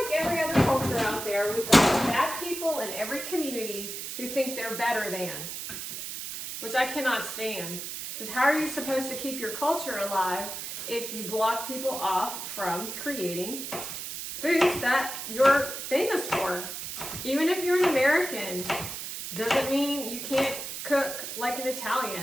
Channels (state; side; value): noise; right; hiss, 7 dB below the sound